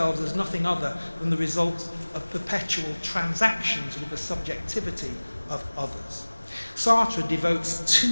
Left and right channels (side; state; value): both; inverted; correlation -1.00